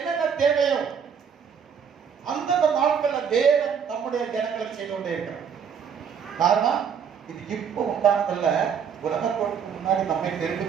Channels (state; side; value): quieter; left; 7.2 dB